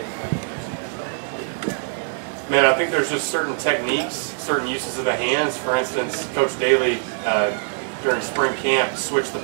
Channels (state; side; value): silent; left; digital silence